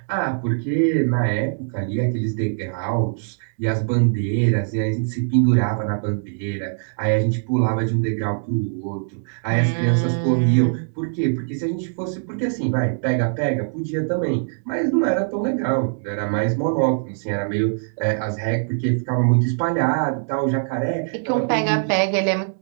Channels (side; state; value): left; silent; digital silence